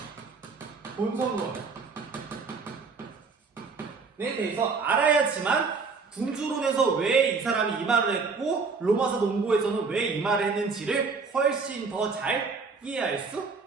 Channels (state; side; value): quieter; left; 4.7 dB